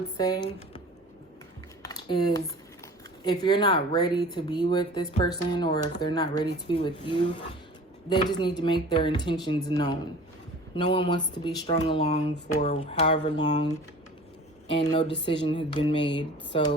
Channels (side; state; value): both; normal; correlation 0.43